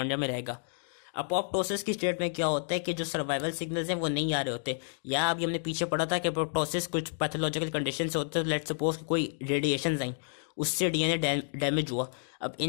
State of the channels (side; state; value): right; silent; digital silence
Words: में रहेगा। अपोप्टोसिस की स्टेट में क्या होता है कि जो सर्वाइवल सिग्नल्स हैं वो नहीं आ रहे होते, या अभी हमने पीछे पढ़ा था कि अपोप्टोसिस कुछ पैथोलॉजिकल कंडीशन से होते हैं। लेट्स सपोज कोई रेडिएशन आई, उससे DNA डैमेज हुआ। अब